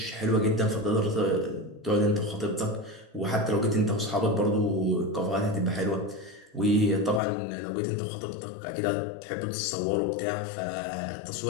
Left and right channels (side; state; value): right; drops out; at 7.2 s